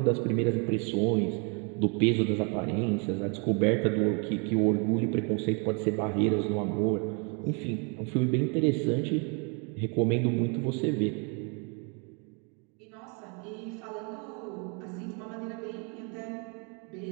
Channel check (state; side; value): quieter; left; 35.6 dB